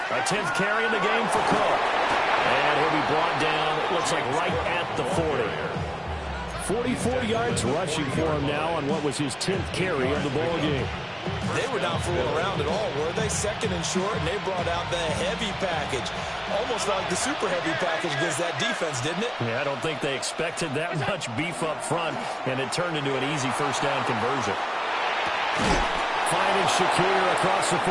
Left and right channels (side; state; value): both; identical; correlation 1.00